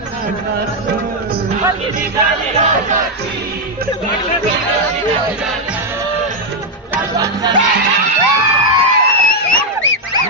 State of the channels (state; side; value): normal; both; correlation 0.02